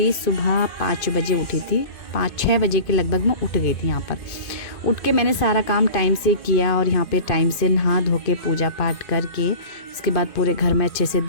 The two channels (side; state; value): right; late; 2.5 ms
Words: सुबह 5 बजे उठी थी, 5-6 बजे के लगभग मैं उठ गई थी। यहाँ पर उठ के मैंने सारा काम टाइम से किया और यहाँ पे टाइम से नहा धो के पूजा पाठ करके उसके बाद पूरे घर में अच्छे से